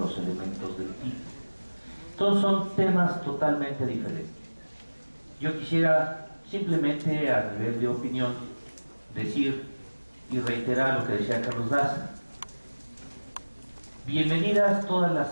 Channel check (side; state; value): both; inverted; correlation -1.00